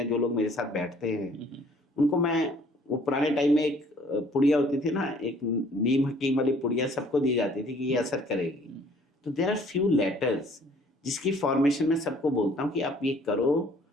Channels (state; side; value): normal; both; correlation 0.57